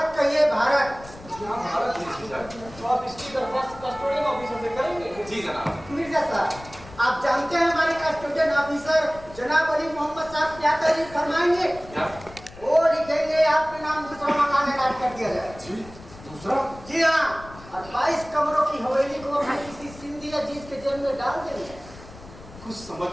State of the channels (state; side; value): noise; left; rumble, 18 dB below the sound